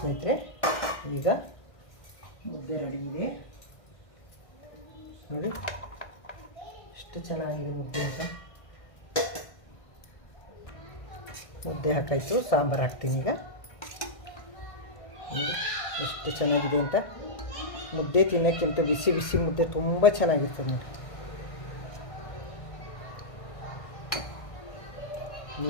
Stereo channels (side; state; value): right; late; 1.6 ms